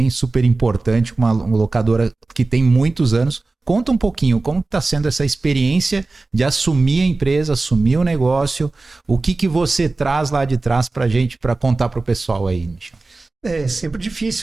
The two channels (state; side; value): quieter; left; 3.5 dB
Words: super importante, uma locadora que tem muitos anos. Conta um pouquinho como está sendo essa experiência de assumir a empresa, assumir o negócio, o que você traz lá de trás para a gente, para contar para o pessoal aí, Michel. É sempre